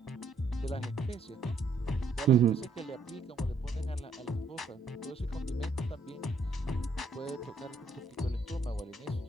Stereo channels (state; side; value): quieter; left; 3.4 dB